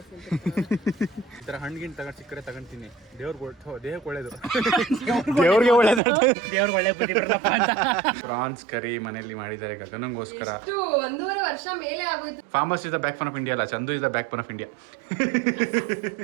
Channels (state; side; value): drops out; left; at 6.0 s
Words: ಥರ ಹಣ್ಣಿಗಿನ್ ತಗೊಂಡು ಸಿಕ್ಕರೆ ತಗೊಂತೀನಿ. ದೇಹಕ್ಕೆ ಒಳ್ಳೇದು. ದೇವ್ರಿಗೆ ಒಳ್ಳೇದು. ದೇವ್ರಿಗೆ ಒಳ್ಳೆ ಬುದ್ಧಿ ಬರಲಪ್ಪ ಅಂತ. ಪ್ರಾನ್ಸ್ ಕರಿ ಮನೆಯಲ್ಲಿ ಮಾಡಿದ್ದಾರೆ ಗಗನಂಗೋಸ್ಕರ. 1.5 ವರ್ಷ ಮೇಲೆ ಆಗೋಯ್ತು. Farmers is the backbone of India ಅಲ್ಲ, Chandu is the backbone of India.